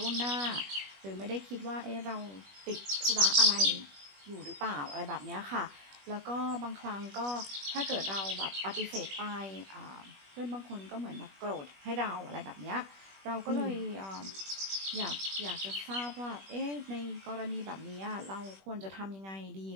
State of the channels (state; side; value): late; left; 21 ms